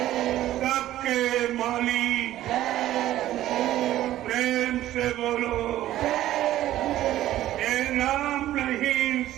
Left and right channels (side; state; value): left; quieter; 13.9 dB